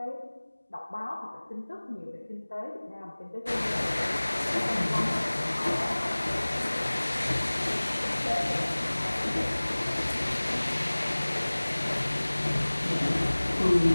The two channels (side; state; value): both; inverted; correlation -1.00